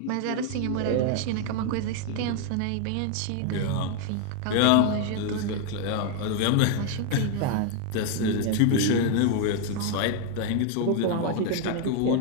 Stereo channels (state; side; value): different; both; correlation 0.00